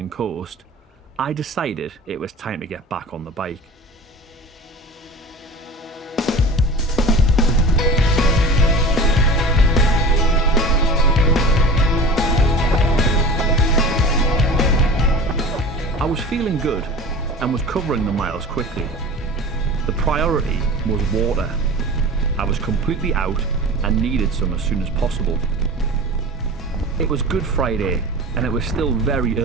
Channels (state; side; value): normal; both; correlation 0.35